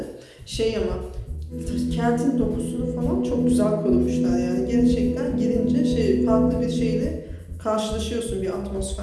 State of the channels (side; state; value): both; identical; correlation 1.00